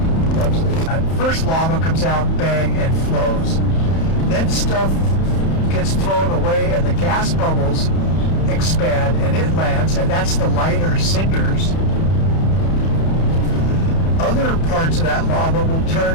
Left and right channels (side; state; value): right; late; 31 ms